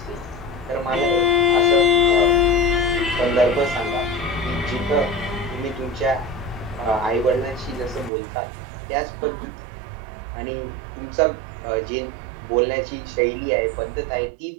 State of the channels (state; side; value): drops out; left; at 8.1 s